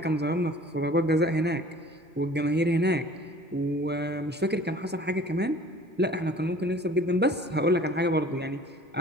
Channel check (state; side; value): normal; both; correlation 0.49